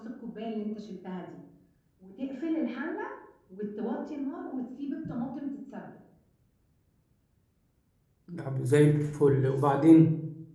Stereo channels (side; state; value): both; identical; correlation 1.00